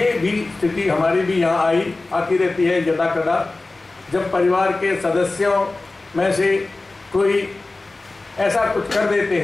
भी स्थिति हमारी भी यहाँ आती रहती है यदा कदा, जब परिवार के सदस्यों में से कोई ऐसा कुछ कर देते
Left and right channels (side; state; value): right; quieter; 3.2 dB